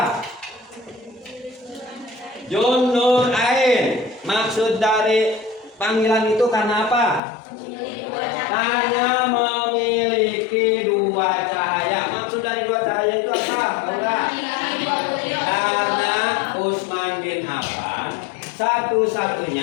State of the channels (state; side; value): drops out; right; at 7.2 s